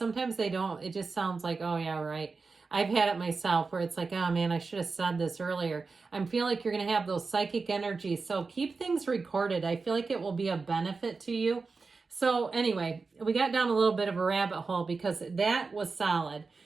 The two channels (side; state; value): left; quieter; 4.3 dB